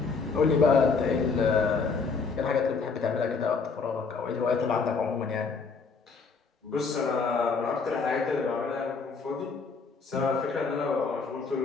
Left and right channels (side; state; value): right; quieter; 4.8 dB